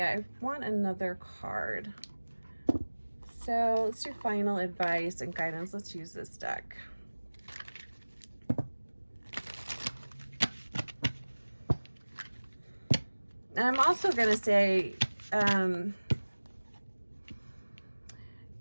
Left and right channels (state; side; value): inverted; both; correlation -1.00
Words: I want another card. So let's do final advice and guidance. Let's use this deck. And I'm also going to say,